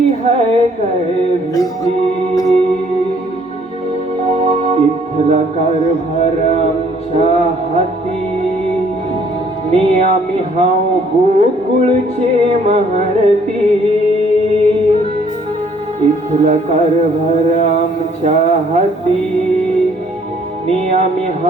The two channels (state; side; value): normal; both; correlation 0.62